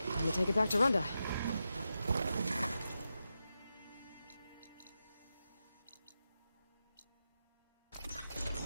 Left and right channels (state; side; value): inverted; both; correlation -0.89